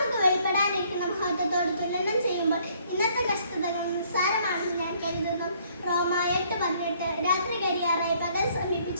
വെളിപ്പെടാനിരിക്കുന്ന മഹത്വത്തോട് തുലനം ചെയ്യുമ്പോൾ ഇന്നത്തെ കഷ്ടതകൾ നിസ്സാരമാണെന്ന് ഞാൻ കരുതുന്നു. റോമ 8:18 രാത്രി കരിയാറായി പകൽ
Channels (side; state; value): both; inverted; correlation -0.64